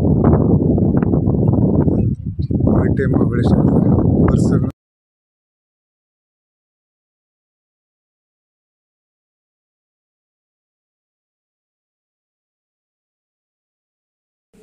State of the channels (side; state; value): both; identical; correlation 1.00